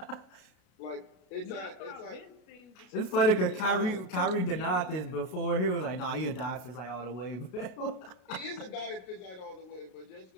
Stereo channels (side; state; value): right; late; 33 ms